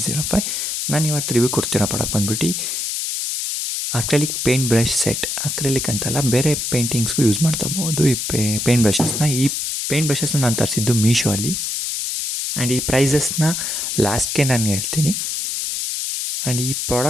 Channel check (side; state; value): left; noise; hiss, 2 dB below the sound